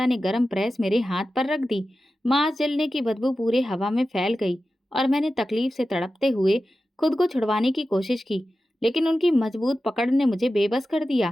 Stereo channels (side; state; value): both; normal; correlation 0.93